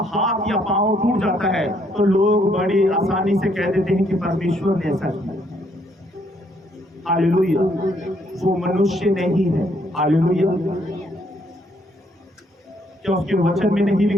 हाथ या पांव टूट जाता है तो लोग बड़ी आसानी से कह देते हैं कि परमेश्वर ने ऐसा किया। हालेलुया, वो मनुष्य नहीं है। हालेलुया, क्या उसके वचन में नहीं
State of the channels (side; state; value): both; normal; correlation 0.69